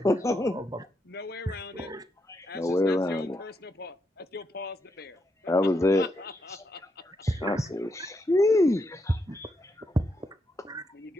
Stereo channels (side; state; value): both; normal; correlation 0.81